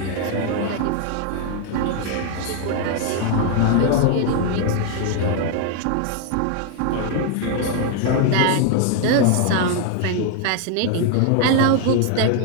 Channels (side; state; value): both; different; correlation 0.01